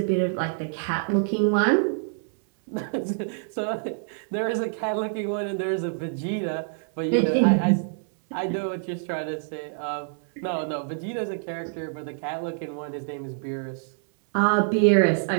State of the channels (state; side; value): silent; left; 61 dB below the other